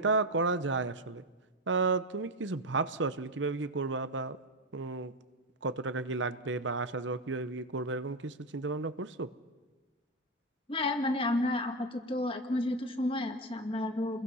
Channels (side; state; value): both; normal; correlation 0.13